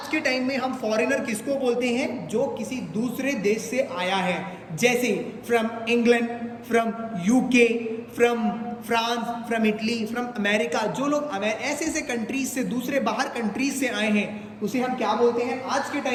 के टाइम में हम फॉरेनर किसको बोलते हैं? जो किसी दूसरे देश से आया है, जैसे from England, from UK, from France, from Italy, from America. जो लोग ऐसे ऐसे कंट्रीज से, दूसरे बाहर कंट्रीज से आए हैं, उसे हम क्या बोलते हैं आज के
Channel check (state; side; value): identical; both; correlation 1.00